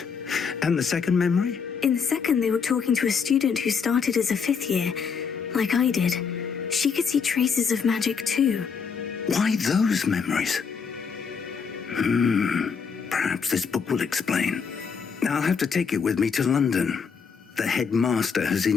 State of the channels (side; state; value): right; quieter; 6.0 dB